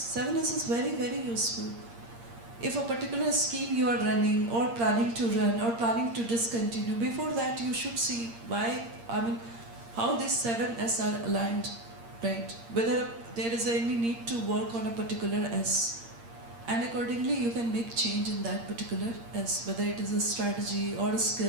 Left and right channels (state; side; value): late; left; 8.7 ms